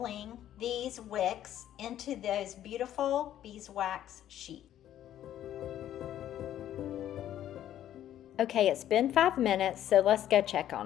these wicks into those beautiful beeswax sheets. Okay, it's been 5 minutes, so let's go check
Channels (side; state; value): right; quieter; 11.7 dB